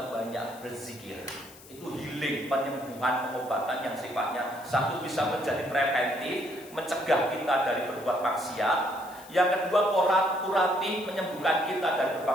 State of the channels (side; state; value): left; noise; hiss, 20 dB below the sound